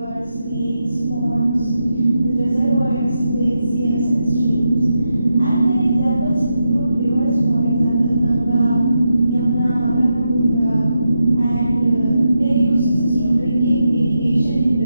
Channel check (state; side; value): inverted; both; correlation -0.86